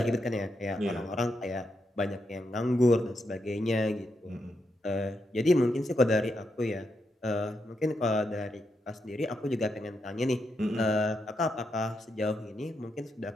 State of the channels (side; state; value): both; normal; correlation 0.83